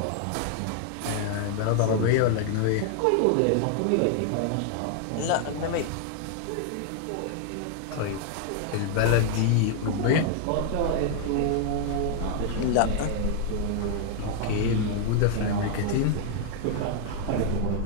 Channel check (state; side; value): different; both; correlation 0.00